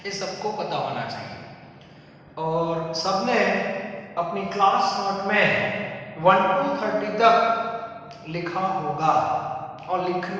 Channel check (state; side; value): identical; both; correlation 1.00